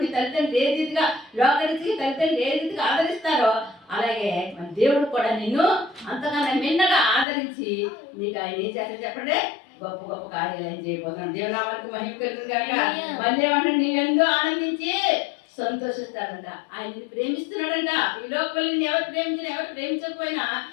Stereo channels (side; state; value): right; drops out; at 7.2 s